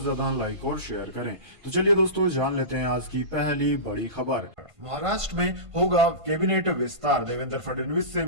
ज्यादा लाइक और शेयर करें। तो चलिए दोस्तों, जान लेते हैं आज की पहली बड़ी खबर। महाराष्ट्र में होगा कैबिनेट विस्तार, देवेंद्र फडणवीस से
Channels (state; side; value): late; left; 1.5 ms